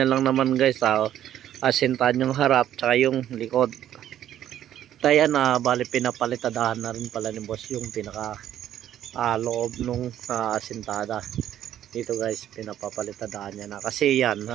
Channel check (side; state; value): left; quieter; 11.3 dB